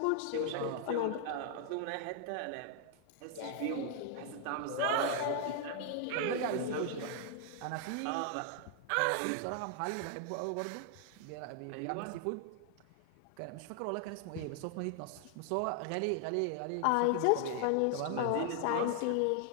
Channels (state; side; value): different; both; correlation 0.00